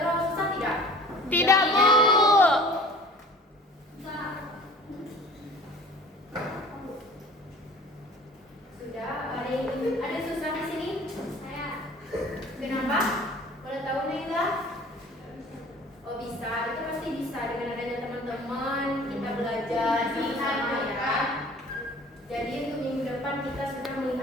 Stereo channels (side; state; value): both; normal; correlation 0.46